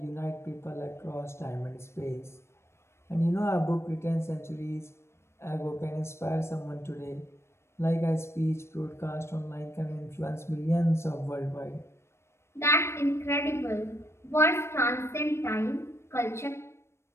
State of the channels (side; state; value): right; late; 0.13 ms